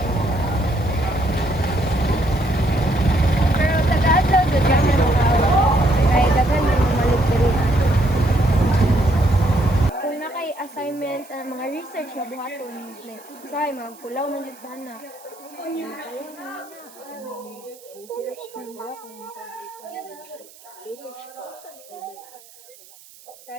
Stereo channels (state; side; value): noise; right; hiss, 23 dB below the sound